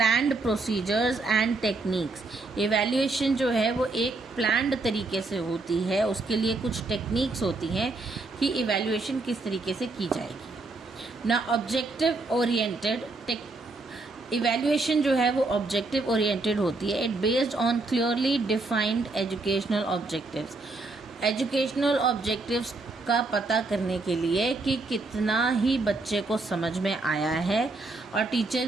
procedures and techniques. Evaluation जो है वो एक प्लान्ड तरीके से होती है, उसके लिए कुछ टेक्निक्स होती हैं कि इवैल्यूएशन किस तरीके से की जाएगी. ना ऑब्जेक्टिव ओरिएंटेड. इवैल्यूएशन जो है वो ऑब्जेक्टिव ओरिएंटेड होती है. It based on clearly defined educational objectives. Educational objectives का पता करने के लिए कि कितना ही बच्चे को समझ में आया है और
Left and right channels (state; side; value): quieter; left; 3.4 dB